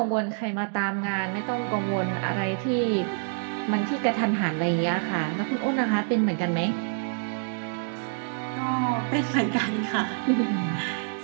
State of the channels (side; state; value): left; silent; 60 dB below the other